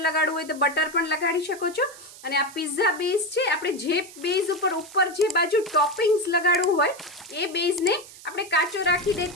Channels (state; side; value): noise; right; hiss, 18 dB below the sound